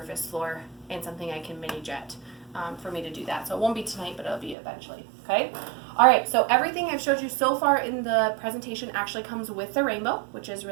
floor and something I can mini jet. For me to do that. So it won't be tonight, but it'll be eventually. Okay? All right, so everything I've showed you so far in the presentation actually comes with the rainbow, which is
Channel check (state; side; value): drops out; left; at 4.5 s